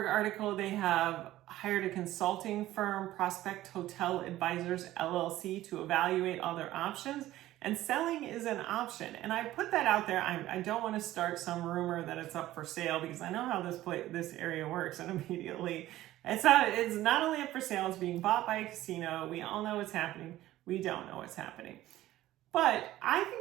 article, they have hired a consulting firm, Prospect Hotel Advisors LLC, to evaluate all their options, and selling is an option. And I put that out there. I don't want to start some rumor that it's up for sale, because I know how this area works, and immediately it's not only up for sale, it's being bought by a casino. We all know what's happening. We don't know what's happening. But I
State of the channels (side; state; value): left; quieter; 15.1 dB